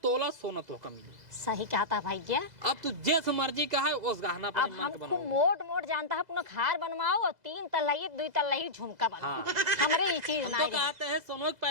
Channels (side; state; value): left; late; 2.0 ms